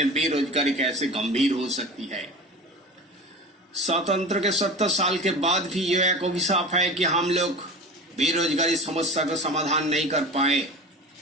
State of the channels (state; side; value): normal; both; correlation 0.33